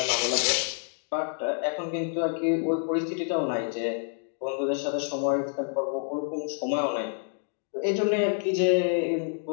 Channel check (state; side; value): silent; right; 59 dB below the other